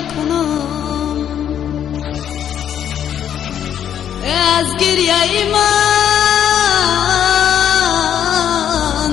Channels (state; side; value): quieter; right; 9.6 dB